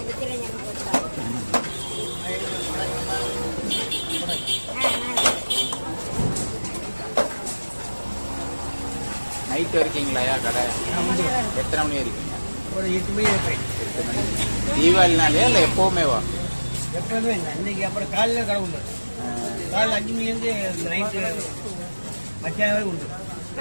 நைட்டு இருக்கீங்களாயா கடை? எத்தனை மணி இருக்கீங்க? ஒரு 8 மணி இருப்பேன். 8 மணி. தீபாவளினாலே இல்லை எப்போவுமேவா? எப்போதுமே இல்லை. அன்னைக்கு அப்புறம் காலையில் கடை உண்டு. காலையில் 5 மணிலேருந்து நைட்டு மத்தியானம் வரை உண்டு.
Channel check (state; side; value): inverted; both; correlation -1.00